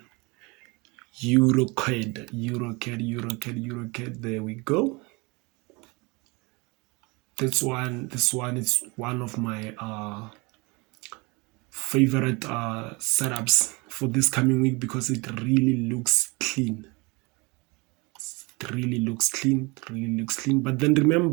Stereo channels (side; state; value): left; quieter; 26.9 dB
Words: EURCAD. There we go. This one is one of my favorite setups for this coming week because it really looks clean. It really looks clean. But then